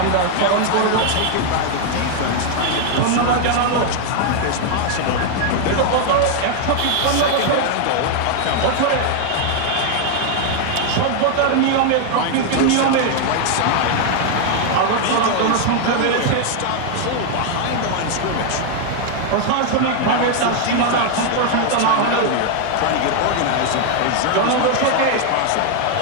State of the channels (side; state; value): both; different; correlation 0.00